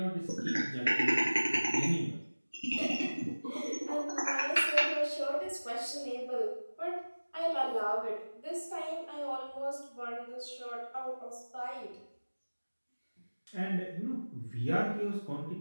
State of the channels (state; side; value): inverted; both; correlation -1.00